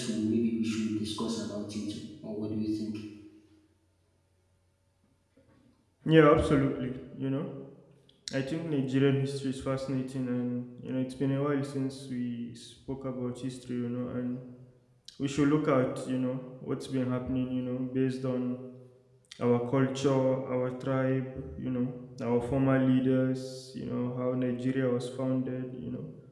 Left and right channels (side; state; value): both; identical; correlation 1.00